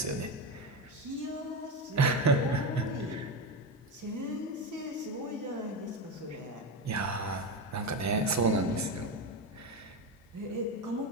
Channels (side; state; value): both; normal; correlation 0.16